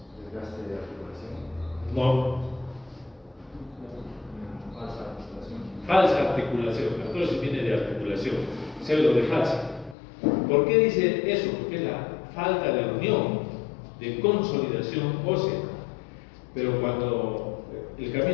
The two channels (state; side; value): drops out; right; at 10.0 s